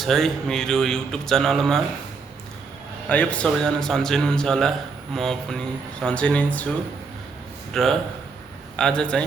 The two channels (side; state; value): left; quieter; 4.8 dB